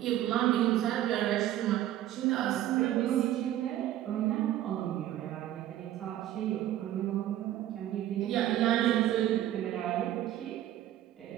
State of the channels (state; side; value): quieter; left; 12.9 dB